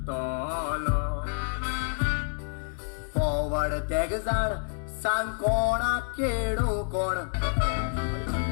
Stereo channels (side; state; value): right; silent; 59 dB below the other